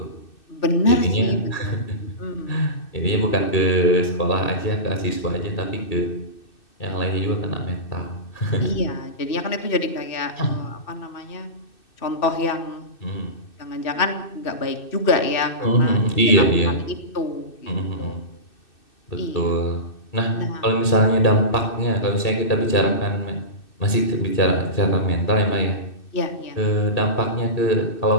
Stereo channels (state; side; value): late; right; 2.6 ms